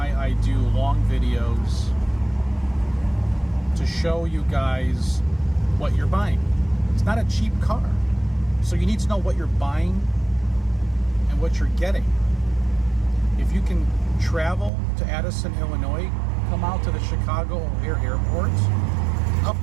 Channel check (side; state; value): left; drops out; at 14.7 s